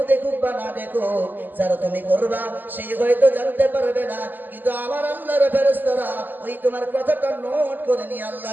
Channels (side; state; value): left; late; 0.088 ms